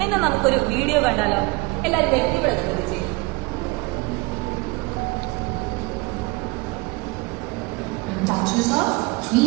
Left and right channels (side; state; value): left; quieter; 24.6 dB